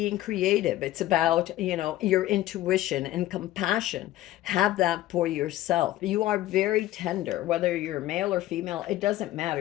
creative. It's about your intuition and compassion. Have that for yourself. You are very tender, whether you're male or female. It doesn't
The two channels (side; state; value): right; quieter; 15.0 dB